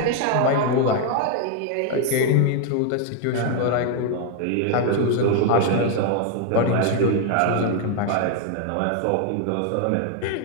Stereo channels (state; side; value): different; both; correlation 0.01